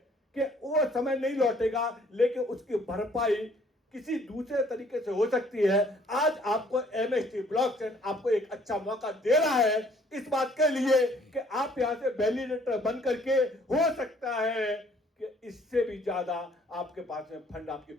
कि वो समय नहीं लौटेगा, लेकिन उसकी भरपाई किसी दूसरे तरीके से हो सकती है। आज आपको एमएसटी ब्लॉकचेन आपको एक अच्छा मौका दे रहा है इस बात के लिए कि आप यहां से वैलिडेटर बन करके, हो सकता है कि इससे भी ज्यादा आपके पास में फंड आपकी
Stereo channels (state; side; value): normal; both; correlation 0.60